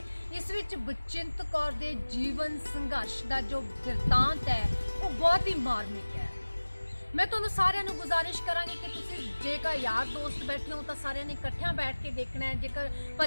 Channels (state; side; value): inverted; both; correlation -1.00